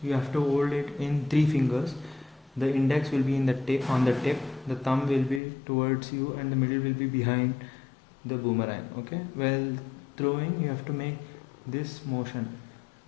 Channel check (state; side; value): drops out; right; at 5.4 s